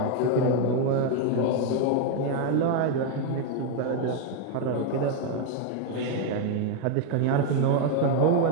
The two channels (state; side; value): different; both; correlation 0.01